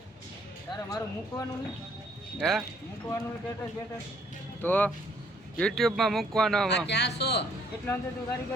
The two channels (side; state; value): both; normal; correlation 0.64